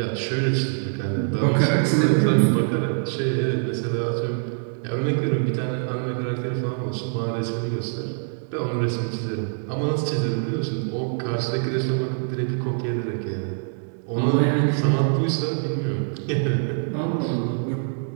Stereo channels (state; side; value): silent; left; digital silence